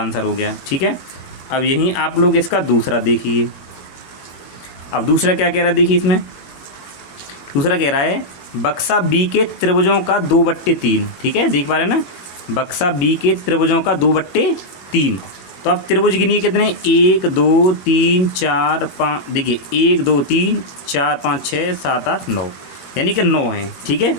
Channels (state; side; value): late; right; 21 ms